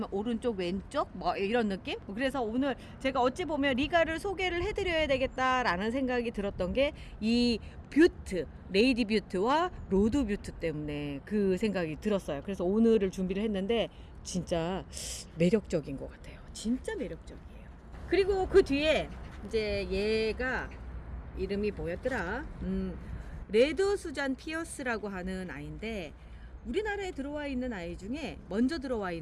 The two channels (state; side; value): identical; both; correlation 1.00